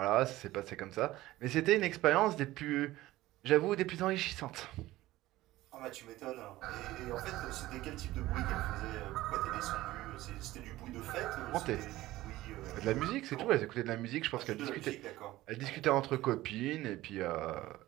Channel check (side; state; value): left; quieter; 16.8 dB